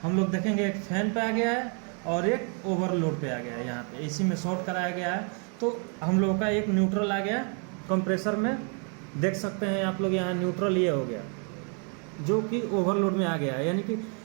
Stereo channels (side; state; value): left; quieter; 39.3 dB